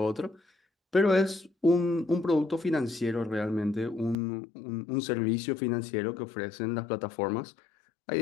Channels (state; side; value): drops out; right; at 4.2 s